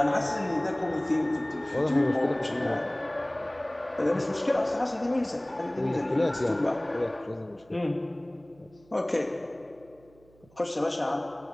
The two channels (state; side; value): noise; right; hum, 29 dB below the sound